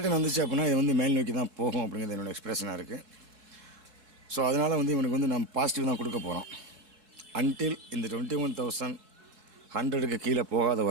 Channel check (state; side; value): late; left; 4.6 ms